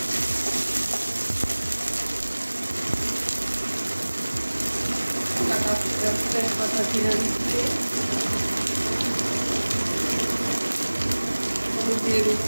তেজপাতা ছিঁড়ে দিচ্ছি, হলুদ দিয়ে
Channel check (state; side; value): inverted; both; correlation -1.00